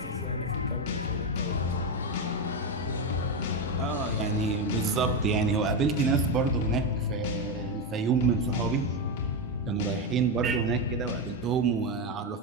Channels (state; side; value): normal; both; correlation 0.10